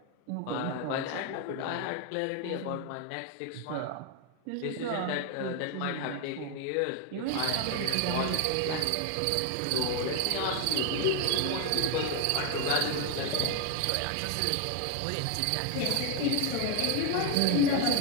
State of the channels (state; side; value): different; both; correlation 0.01